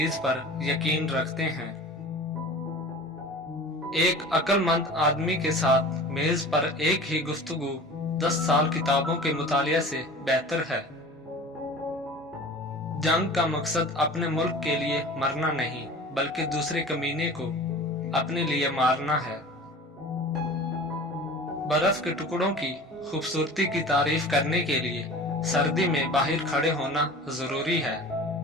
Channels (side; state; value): both; normal; correlation 0.39